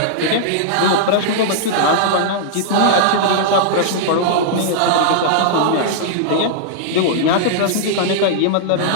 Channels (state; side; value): different; both; correlation -0.02